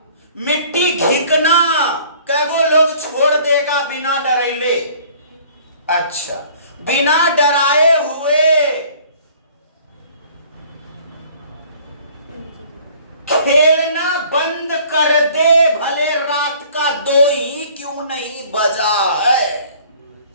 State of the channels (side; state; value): both; inverted; correlation -0.53